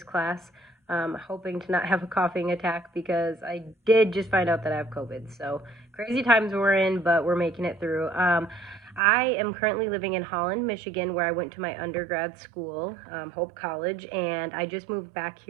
class. Hoping to not have a coughing attack because I did just find out that I have COVID. So crazy times we're in, but we're making it through. I am currently living in Holland, Michigan, where I went to my undergrad school, Hope College, and I just moved back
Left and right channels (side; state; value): left; drops out; at 9.0 s